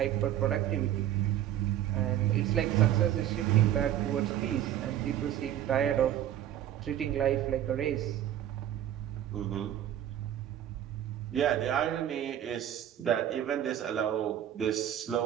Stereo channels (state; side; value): quieter; left; 11.3 dB